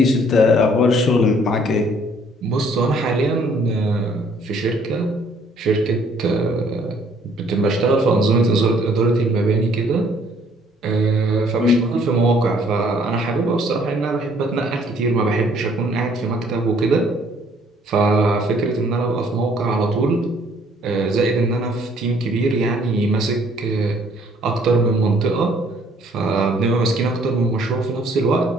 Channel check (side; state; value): both; normal; correlation 0.61